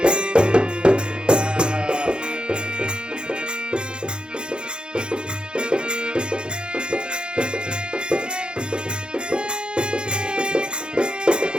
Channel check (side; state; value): left; late; 0.051 ms